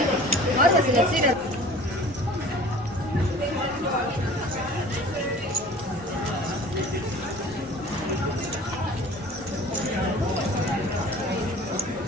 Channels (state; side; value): normal; both; correlation 0.45